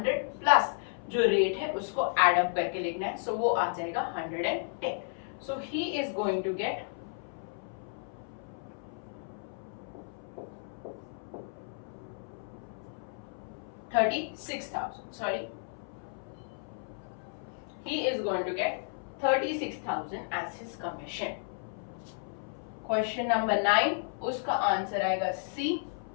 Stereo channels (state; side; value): silent; right; 56 dB below the other